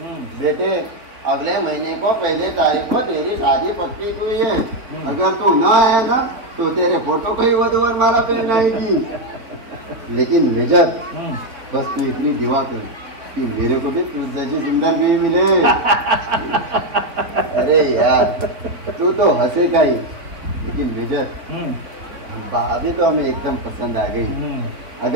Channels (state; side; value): late; left; 3.8 ms